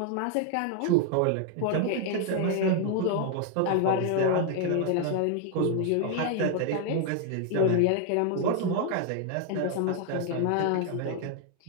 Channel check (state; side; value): different; both; correlation 0.00